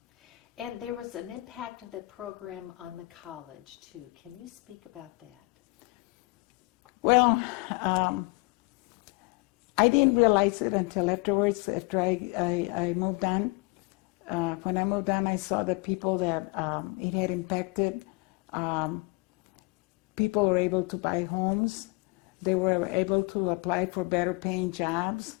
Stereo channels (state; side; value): quieter; right; 25.6 dB